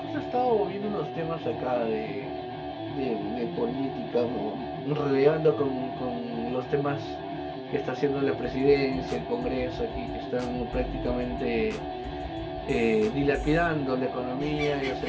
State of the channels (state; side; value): identical; both; correlation 1.00